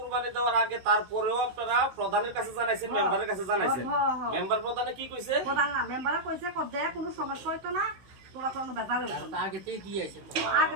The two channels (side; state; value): left; late; 16 ms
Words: দেওয়ার আগে তারপরেও আপনারা প্রধানের কাছে জানাইছেন মেম্বারের কাছে জানাইছেন মেম্বার প্রধানে কি কইছে প্রধান না মেম্বারে কইছে দে কোনো সমস্যা হইতো না তোরা কোনো বেজাল হইতো না আগে থেকে দিয়েছে তো আগে